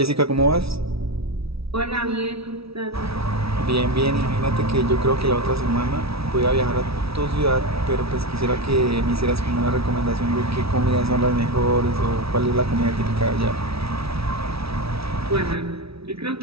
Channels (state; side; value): late; left; 0.76 ms